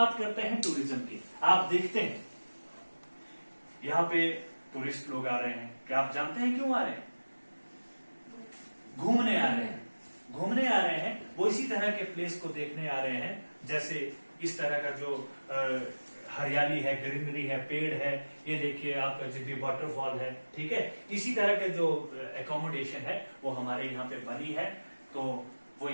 करते हैं टूरिज्म की। आप देखते हैं यहाँ पे टूरिस्ट लोग आ रहे हैं। क्या आप जानते हैं क्यों आ रहे हैं? घूमने आ रहे हैं। घूमने आ रहे हैं, वो इसी तरह के प्लेस को देखने आ रहे हैं, जैसे इस तरह का जो हरियाली है, ग्रीनरी है, पेड़ है। ये देखिए आपका जिब्भी वाटरफॉल है, ठीक है। इसी तरह के जो एकोमोडेशन है, वो हमारे यहाँ पे बनी है, तो वो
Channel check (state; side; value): inverted; both; correlation -1.00